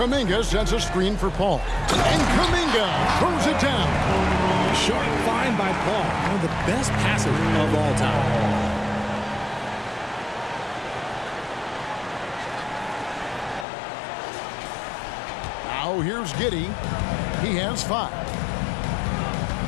sends a screen for Paul. And Kuminga throws it down. Sharp find by Paul. One of the best passes of all time. Now here's Giddey. He has 5.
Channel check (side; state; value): right; drops out; at 13.7 s